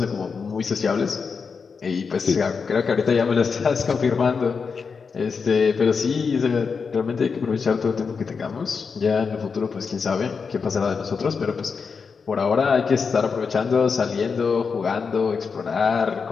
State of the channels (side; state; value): right; quieter; 5.4 dB